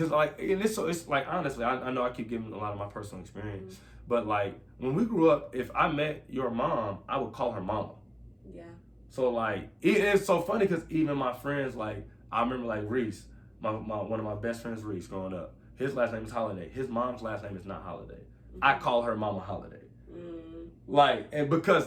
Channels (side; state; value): both; identical; correlation 1.00